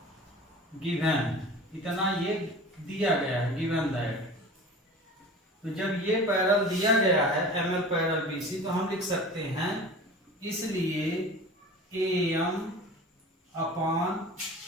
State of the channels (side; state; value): both; normal; correlation 0.38